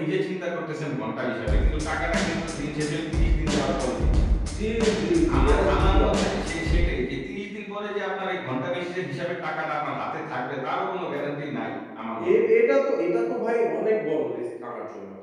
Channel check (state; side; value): identical; both; correlation 1.00